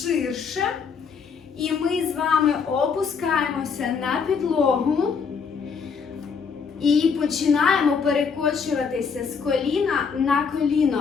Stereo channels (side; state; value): right; quieter; 5.8 dB